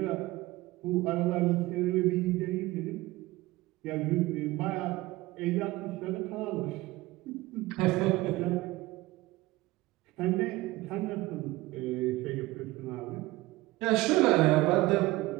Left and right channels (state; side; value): quieter; left; 19.2 dB